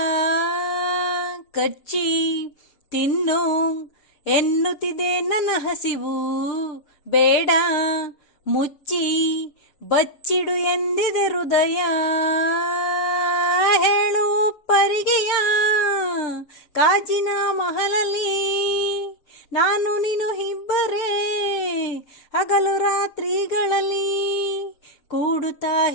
ಕಚ್ಚಿ ತಿನ್ನು ಎನ್ನುತ್ತಿದೆ ನನ್ನ ಹಸಿವು, ಬೇಡ ಮುಚ್ಚಿ ಬಚ್ಚಿಡು ಎಂದಿದೆ ಹೃದಯ. ಹೇಳು ಪರಿಗೆಯ ಕಾಜಿನ ಮಹಲಲ್ಲಿ ನಾನು ನೀನು ಇಬ್ಬರೇ, ಹಗಲು ರಾತ್ರಿಗಳಲ್ಲಿ ಕೂಡುತ್ತಾ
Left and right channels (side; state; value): right; late; 6.8 ms